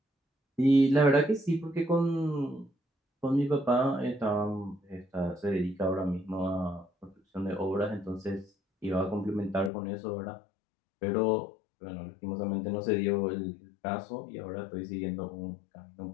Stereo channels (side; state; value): right; drops out; at 9.7 s